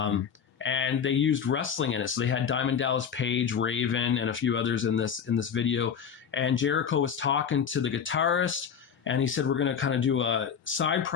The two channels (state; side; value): quieter; right; 7.3 dB